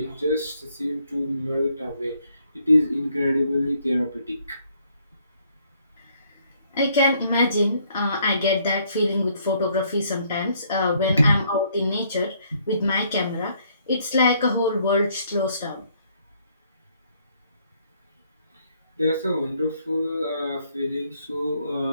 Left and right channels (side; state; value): both; inverted; correlation -0.68